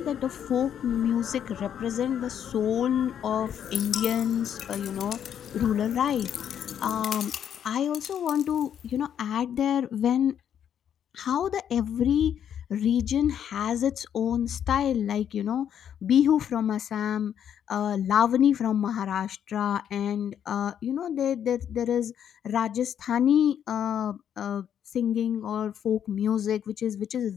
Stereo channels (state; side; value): quieter; right; 9.2 dB